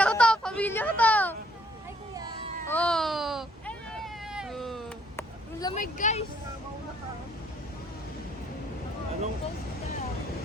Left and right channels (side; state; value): both; normal; correlation 0.64